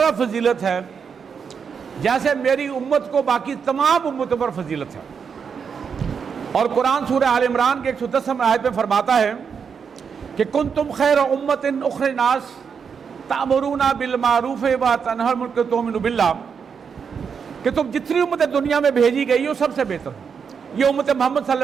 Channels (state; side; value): quieter; left; 6.4 dB